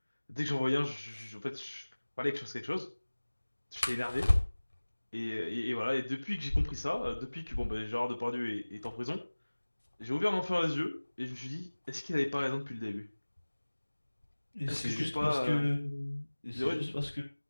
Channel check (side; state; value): both; inverted; correlation -1.00